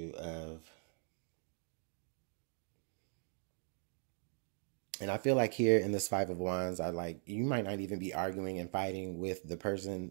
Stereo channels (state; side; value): silent; left; 51 dB below the other